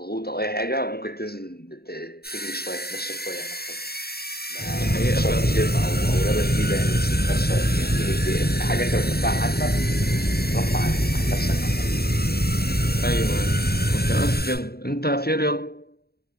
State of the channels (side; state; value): right; late; 0.46 ms